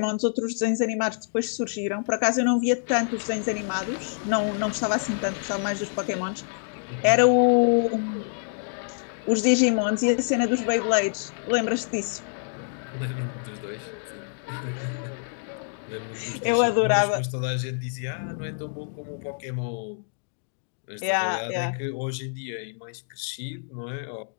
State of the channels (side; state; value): right; silent; digital silence